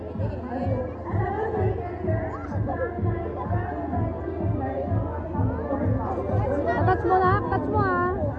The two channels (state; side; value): identical; both; correlation 1.00